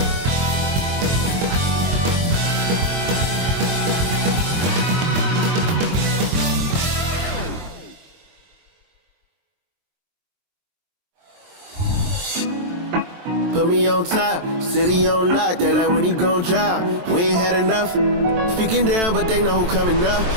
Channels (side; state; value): left; late; 23 ms